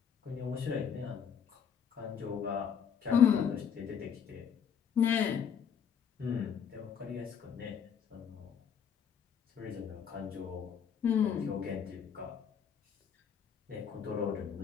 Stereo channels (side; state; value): right; quieter; 7.6 dB